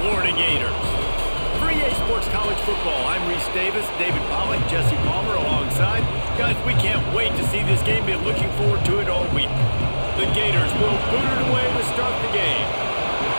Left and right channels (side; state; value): both; inverted; correlation -1.00